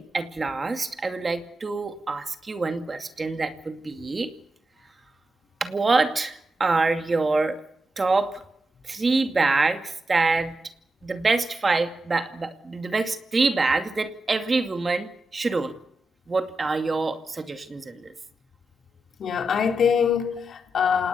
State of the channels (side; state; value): both; normal; correlation 0.88